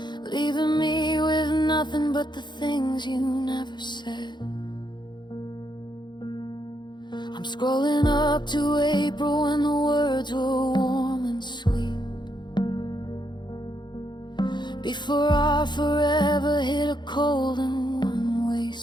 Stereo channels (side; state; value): right; late; 0.22 ms